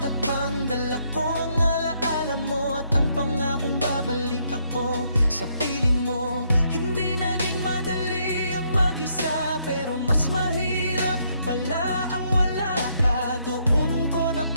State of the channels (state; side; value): inverted; both; correlation -0.73